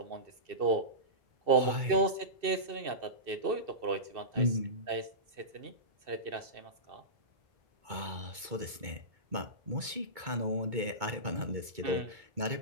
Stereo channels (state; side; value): late; left; 2.2 ms